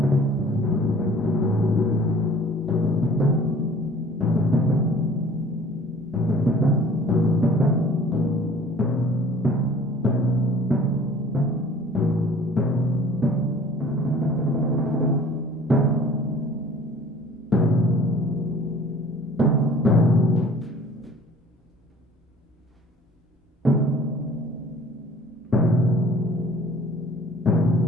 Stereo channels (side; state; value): both; normal; correlation 0.50